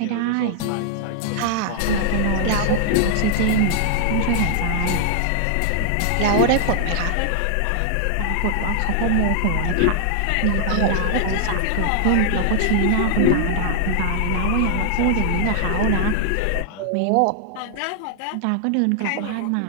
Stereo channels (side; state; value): both; different; correlation -0.01